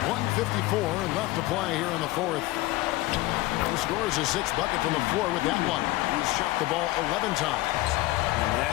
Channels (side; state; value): right; quieter; 18.5 dB